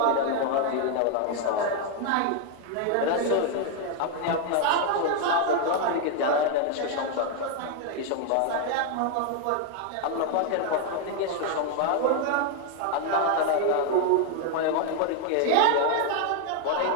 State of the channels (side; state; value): both; different; correlation 0.00